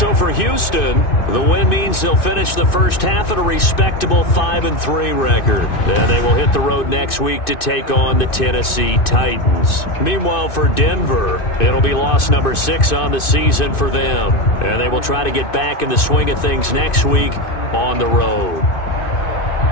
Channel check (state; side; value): late; right; 2.6 ms